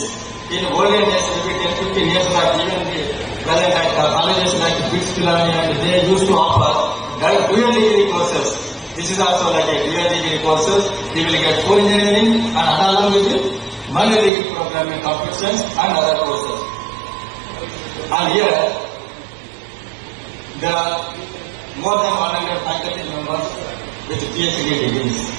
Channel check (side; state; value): left; drops out; at 14.3 s